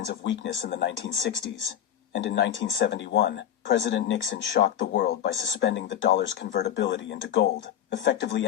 of weakness in the 1960s, and in 1971, President Nixon shocked the world by suspending the dollar's convertibility into gold, effectively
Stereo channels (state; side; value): quieter; right; 10.2 dB